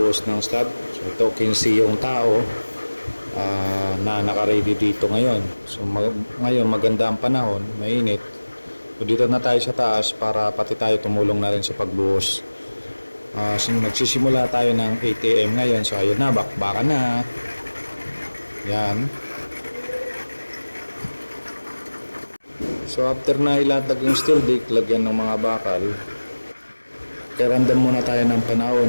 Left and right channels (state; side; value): inverted; both; correlation -1.00